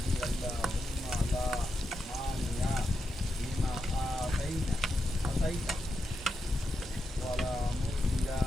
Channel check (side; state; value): both; normal; correlation 0.86